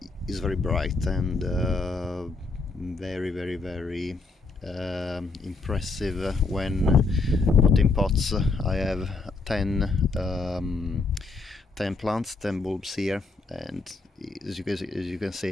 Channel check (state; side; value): quieter; right; 3.7 dB